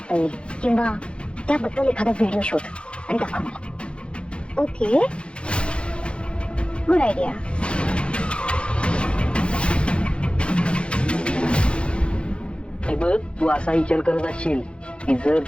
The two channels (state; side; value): late; right; 0.057 ms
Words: येईल किंवा त्याबद्दल एखादा व्हिडिओ शोध आणि दाखव मला. Okay, good idea. हे बघ, तू असा विचार करत असशील की जर